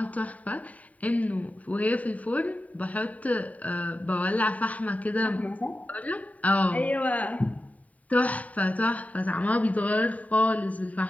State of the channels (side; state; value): right; late; 0.070 ms